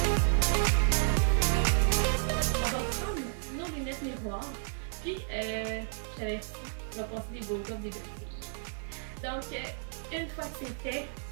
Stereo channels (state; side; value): silent; left; 57 dB below the other